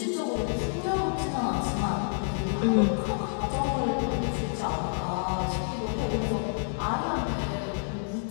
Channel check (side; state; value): right; silent; 59 dB below the other